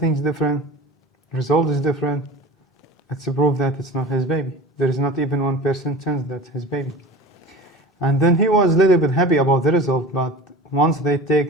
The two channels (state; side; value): normal; both; correlation 0.36